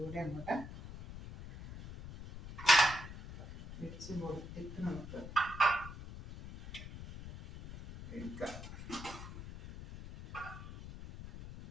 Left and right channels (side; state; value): left; noise; rumble, 11 dB below the sound